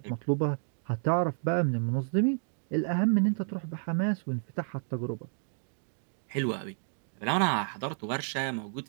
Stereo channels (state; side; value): silent; left; digital silence